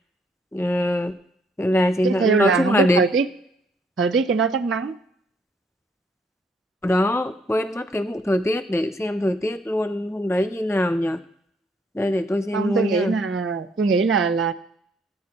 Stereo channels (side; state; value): both; normal; correlation 0.67